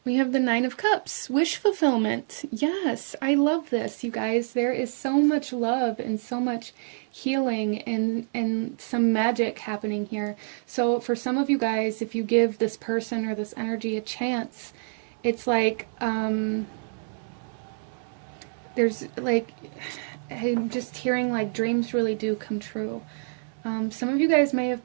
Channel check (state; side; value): silent; left; 60 dB below the other